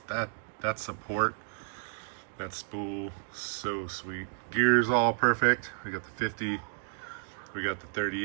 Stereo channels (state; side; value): silent; left; digital silence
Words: That support, that spool, so sweet. Gears all perfect. We got the 50, we got the